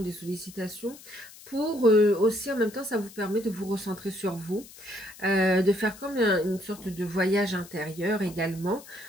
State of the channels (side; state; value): left; noise; hiss, 19 dB below the sound